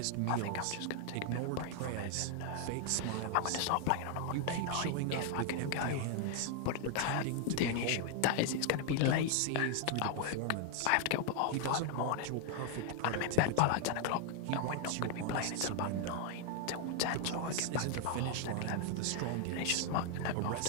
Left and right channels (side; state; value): both; different; correlation 0.00